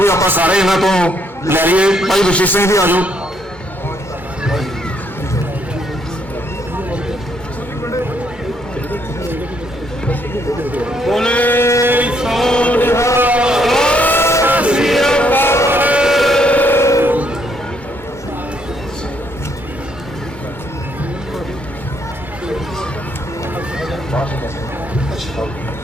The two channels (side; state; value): right; late; 2.2 ms